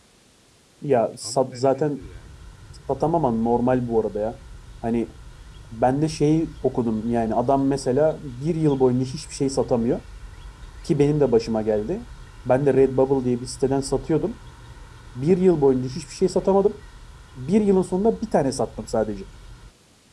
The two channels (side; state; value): both; identical; correlation 1.00